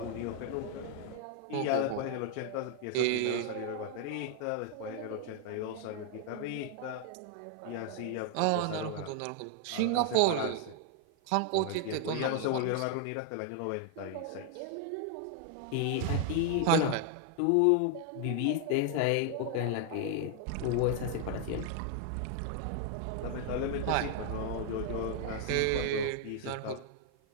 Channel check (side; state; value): both; different; correlation 0.00